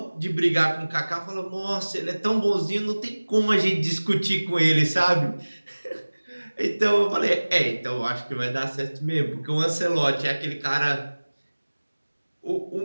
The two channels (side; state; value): both; inverted; correlation -1.00